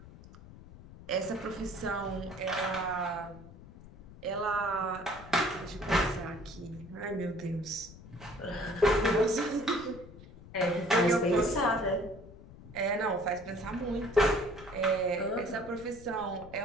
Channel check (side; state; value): left; noise; rumble, 18 dB below the sound